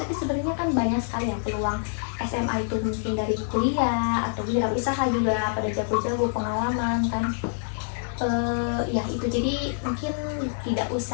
sebenarnya kan banyak sekali ya peluang SMA itu, mungkin dari kuliah atau wirausaha juga pada jago-jago pengalaman kan. Ya itu, jadi mungkin tidak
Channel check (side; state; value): right; silent; digital silence